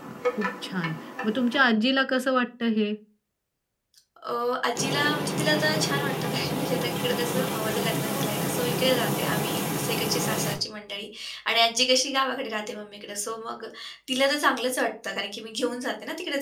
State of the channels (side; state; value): both; identical; correlation 1.00